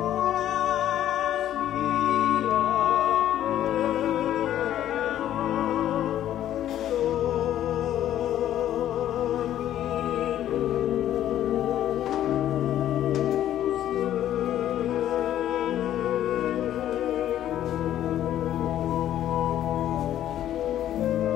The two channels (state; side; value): quieter; right; 11.8 dB